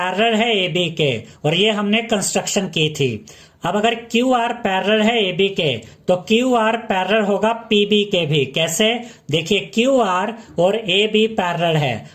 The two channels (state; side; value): identical; both; correlation 1.00